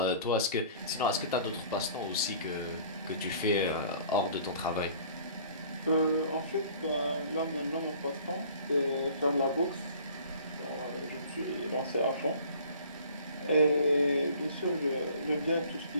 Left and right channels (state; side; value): inverted; both; correlation -0.50